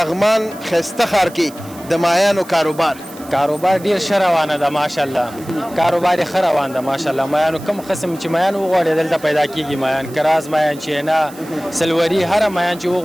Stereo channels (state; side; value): noise; right; hiss, 20 dB below the sound